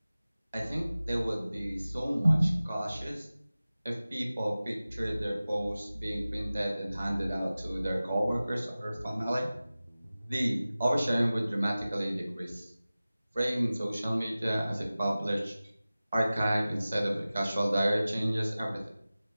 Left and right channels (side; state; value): both; inverted; correlation -0.97